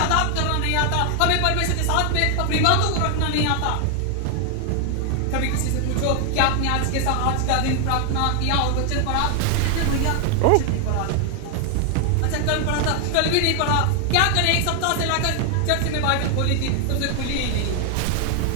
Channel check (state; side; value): different; both; correlation 0.00